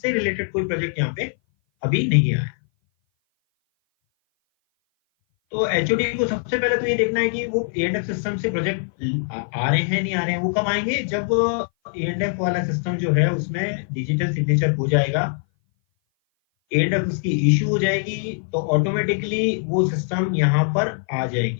रिलेटेड कोई प्रोजेक्ट यहाँ पे अभी नहीं आया। तो एचओडी को सबसे पहले तो ये देखना है कि वो एएनएफ सिस्टम से प्रोजेक्ट आ रहे हैं नहीं आ रहे हैं। वो कब आएंगे? जब एएनएफ वाला सिस्टम जो है उसमें डिजिटल सिग्नेचर हो जाएगा, एएनएफ उसकी इश्यू हो जाएगी तो ऑटोमेटिकली वो सिस्टम यहाँ पर आ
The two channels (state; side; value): silent; right; 58 dB below the other